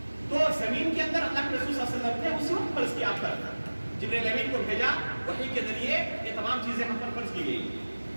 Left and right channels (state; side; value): inverted; both; correlation -1.00